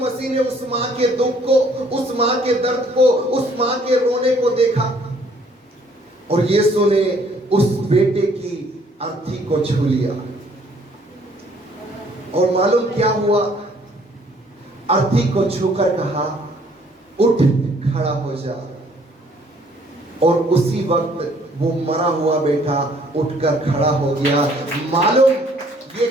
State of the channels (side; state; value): both; normal; correlation 0.61